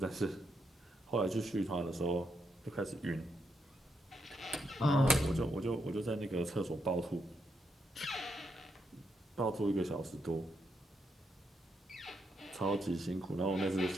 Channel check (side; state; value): both; normal; correlation 0.81